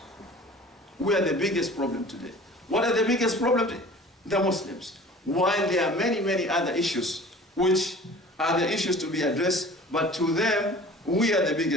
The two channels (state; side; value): normal; both; correlation 0.44